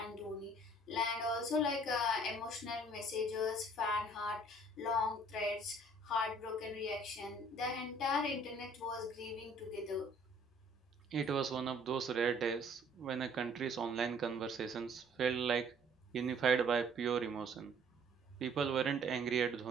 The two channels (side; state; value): both; normal; correlation 0.56